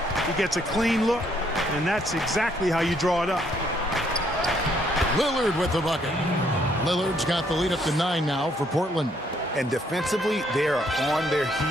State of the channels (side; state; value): both; normal; correlation 0.69